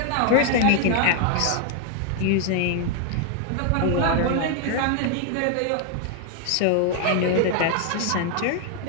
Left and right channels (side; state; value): both; different; correlation 0.00